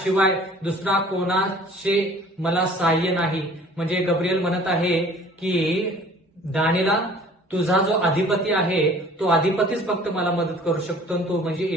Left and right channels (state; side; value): normal; both; correlation 0.50